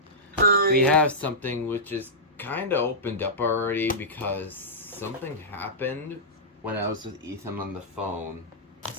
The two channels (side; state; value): both; normal; correlation -0.14